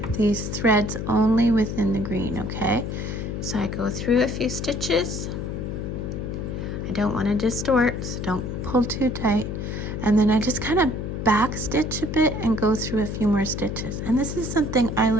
these threads only within the green, okay? So I go through a few stitches. I don't want to distort, so don't pull too tight. And then I just kind of back stitch a bit and go through a few more stitches. And this is something I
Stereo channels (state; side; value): noise; left; hum, 4 dB below the sound